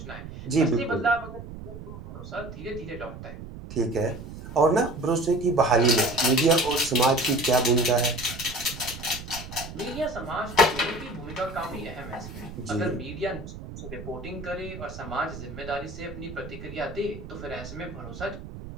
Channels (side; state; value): right; noise; rumble, 12 dB below the sound